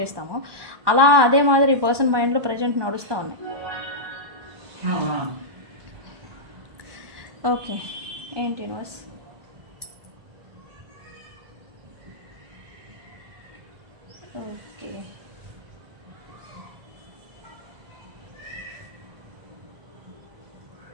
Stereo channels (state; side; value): late; left; 1.1 ms